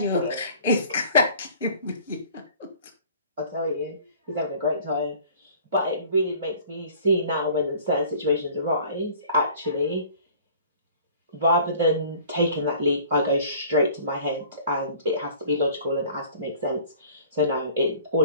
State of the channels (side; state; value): both; inverted; correlation -0.49